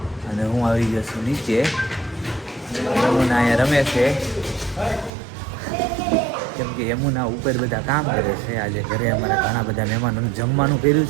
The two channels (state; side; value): drops out; left; at 5.1 s